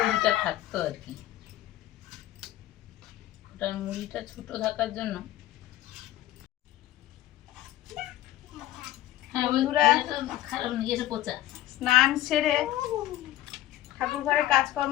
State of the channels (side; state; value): right; quieter; 14.5 dB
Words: থাকতো আর কি, ওটার মুড়িটা ছোট থাকার জন্য। হ্যাঁ বন্ধুরা, খারাপ নিয়ে এসে পচা। স্নান সেরে ঠাকুর ঘরে